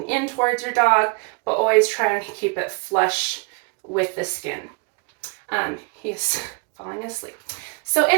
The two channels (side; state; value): left; quieter; 32.4 dB